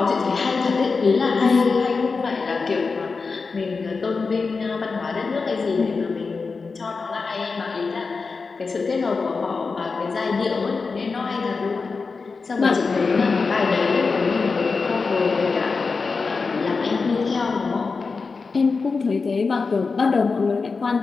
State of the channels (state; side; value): quieter; right; 4.5 dB